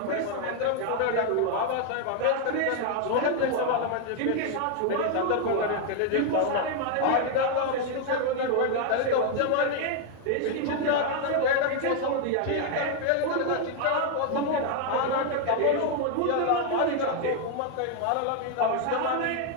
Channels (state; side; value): different; both; correlation 0.00